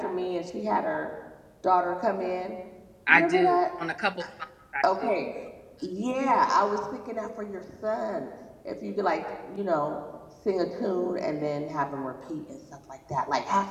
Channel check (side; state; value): both; identical; correlation 1.00